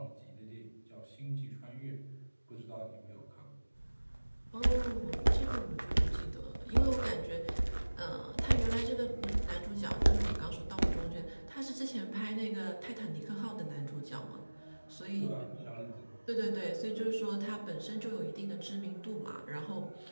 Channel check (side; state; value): both; inverted; correlation -1.00